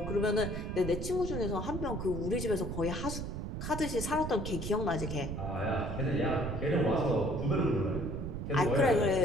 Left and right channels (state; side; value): noise; right; rumble, 5 dB below the sound